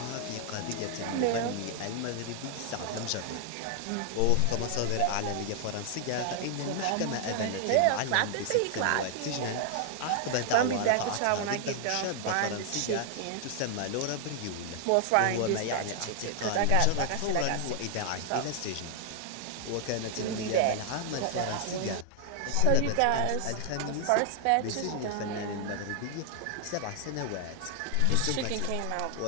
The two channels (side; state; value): both; different; correlation 0.00